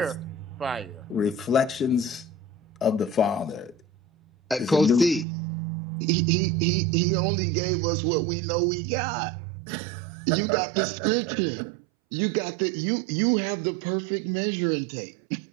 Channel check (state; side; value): drops out; left; at 5.2 s